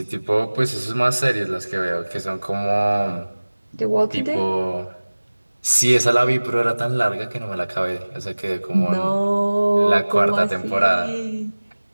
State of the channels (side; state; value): both; inverted; correlation -1.00